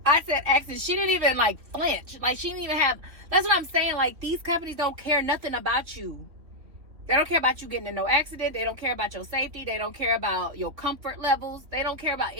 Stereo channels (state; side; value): late; left; 3.3 ms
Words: I said accident. She didn't even like flinch. Like, she didn't even have, that's what I'm saying. Like, these companies don't care nothing about you. They don't care about you getting in no accident. They don't care about your safety. They don't care about your comfort levels. They don't care about